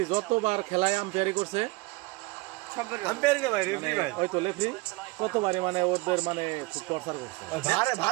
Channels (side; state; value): left; quieter; 23.1 dB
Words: যতবার খেলায় আম্পায়ারি করছে, কতবারে মানে ওদের মানে খুব টর্চার করছে।